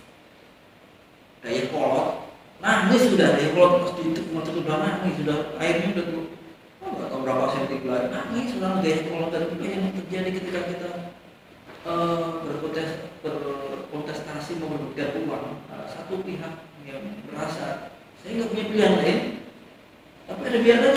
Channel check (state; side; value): identical; both; correlation 1.00